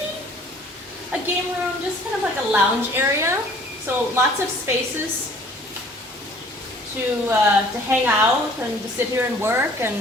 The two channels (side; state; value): both; normal; correlation 0.53